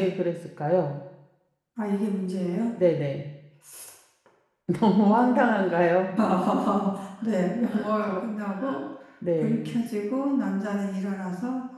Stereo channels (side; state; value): both; identical; correlation 1.00